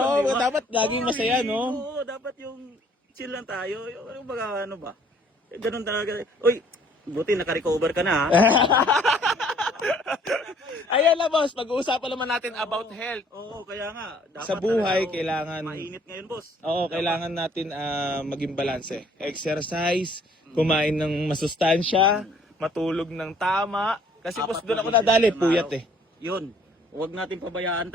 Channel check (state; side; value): normal; both; correlation 0.60